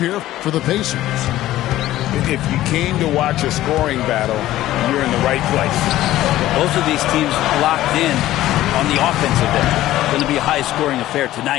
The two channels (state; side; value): quieter; right; 14.7 dB